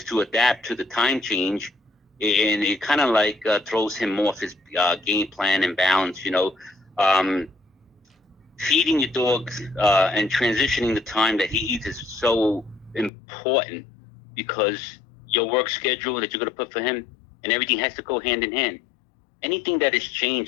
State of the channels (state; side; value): drops out; right; at 13.1 s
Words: to adapt to the time change. and it kind of like throws him off his game plan and balance. Um, Feeding your dog and transitioning the time that he eats is so important because your work schedule that you're going to put for him and everything has to go hand in hand. Anything that is